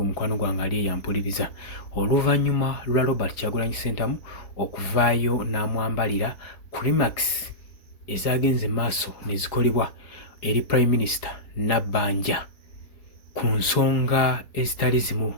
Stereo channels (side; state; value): right; late; 4.9 ms